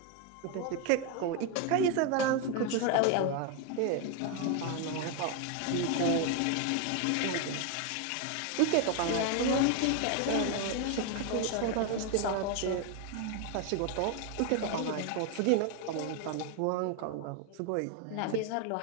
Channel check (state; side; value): different; both; correlation 0.01